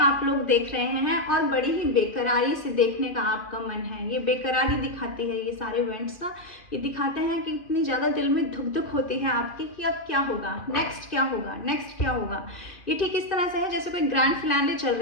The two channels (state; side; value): late; right; 2.6 ms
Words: लोग देख रहे हैं और बड़ी ही बेकरारी से देखने का आपका मन है। ये बेकरारी दिखाती है, ये सारे इवेंट्स ना ये दिखाते हैं कि इतनी ज़्यादा दिल में धुक धुक होती है आपकी कि अब क्या होगा, नेक्स्ट क्या होगा, नेक्स्ट क्या होगा। ये ठीक इस तरह से है जैसे कोई ग्रैंड फिनाले चल